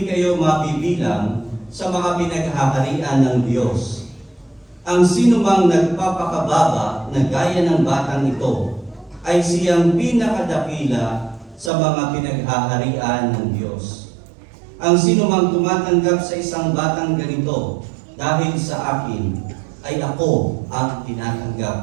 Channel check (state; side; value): drops out; left; at 11.7 s